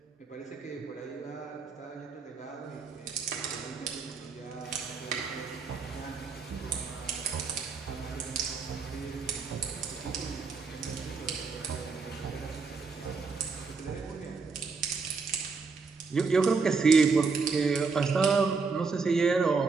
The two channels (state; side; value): quieter; left; 4.8 dB